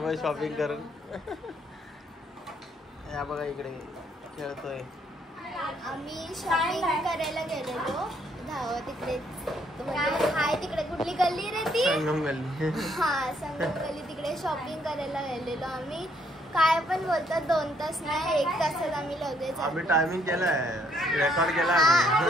शॉपिंग करून या बघा इकडे खेळतोय. आम्ही शॉपिंग करायला गेलेलो तिकडे हाय तिकडे कुठली गल्ली रे ती संगम गल्ली. हा संगम गल्ली तिकडे शॉपिंग करायला गेलेलो आम्ही. काय पण बोलतात 2 तास नाही 1 तासात आम्ही लगेच आम्ही टायमिंग केलाय, रेकॉर्ड केला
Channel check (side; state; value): both; normal; correlation 0.69